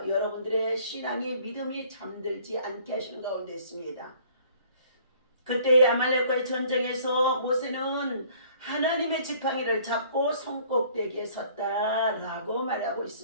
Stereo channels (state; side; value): inverted; both; correlation -0.55